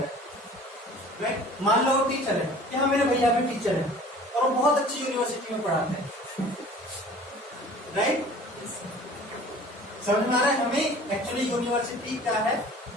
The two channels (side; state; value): both; normal; correlation 0.46